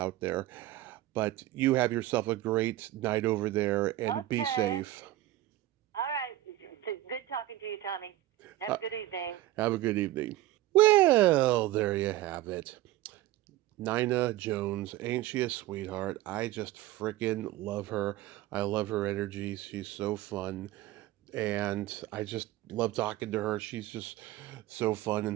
there. But you have yourself a great night over there and be Okay. safe. All right. Good talking to you, Tommy. Have a good evening. Have a good evening. Well, there you have it. Nina Jones, ain't she a sweetheart? I just freaking love her. I love her energy. She's so fun. And I just love talking to her. She's just so fun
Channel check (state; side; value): quieter; left; 15.5 dB